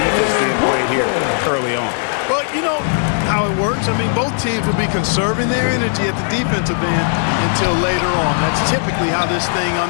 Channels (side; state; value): right; silent; digital silence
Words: being played here early on. Well, you know how it works. I mean, both teams will be conserving their energy at the defensive end until later on. That's typically how this thing